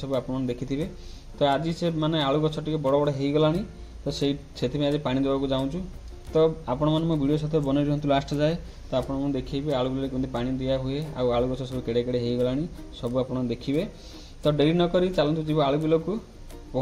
आप देखिथे। तो आज से माने आलू गछ टे बड़ बड़ हो गलानी, तो से आज पानी देवाक जाऊँ। तो आपण मैंने मो वीडियो सहित बन रुहतु लास्ट जाए। तो आपको देखिए आलू बिल केमती पानी दिया हुए आलू गछ सब केड़े केड़े हो गलानी सब आप देखिए। तो डेरी नक चलतु जी आलू बिल को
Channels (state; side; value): identical; both; correlation 1.00